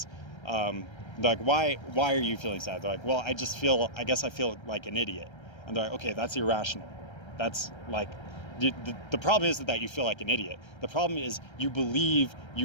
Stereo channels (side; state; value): right; late; 1.3 ms